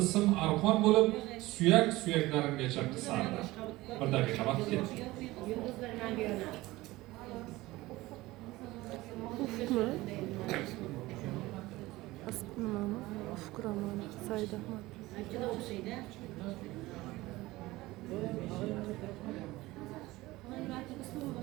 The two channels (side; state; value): left; quieter; 19.1 dB